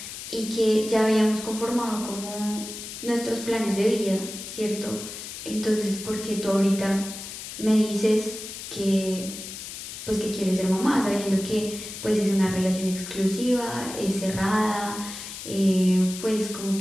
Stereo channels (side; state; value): left; noise; hiss, 10 dB below the sound